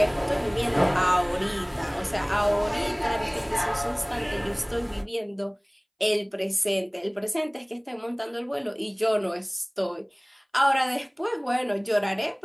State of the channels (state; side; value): identical; both; correlation 1.00